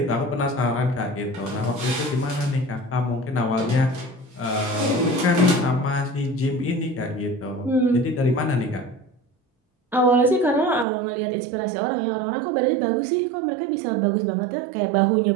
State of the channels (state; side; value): drops out; left; at 10.9 s